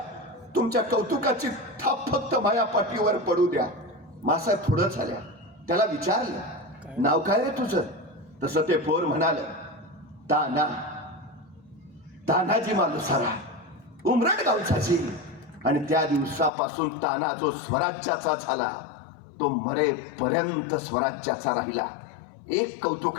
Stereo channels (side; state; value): right; drops out; at 16.5 s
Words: तुमच्या कौतुकाची थाप फक्त माया पाठीवर पडू द्या. मासाहेब पुढं झाल्या. त्याला विचारलं, नाव काय रे तुझं? तसं ते पोर म्हणाल, ताना, तानाजी मालुसरा, उमरड गावचाची. आणि त्या दिवसापासून ताना जो स्वराज्याचा झाला तो मरेपर्यंत स्वराज्याचा राहिला. एक